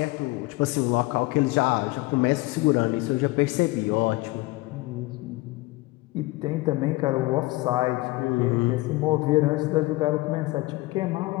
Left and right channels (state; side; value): quieter; right; 21.5 dB